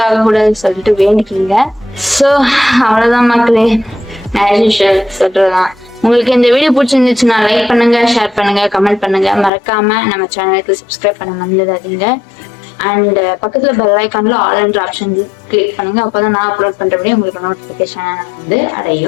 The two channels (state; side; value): drops out; right; at 9.5 s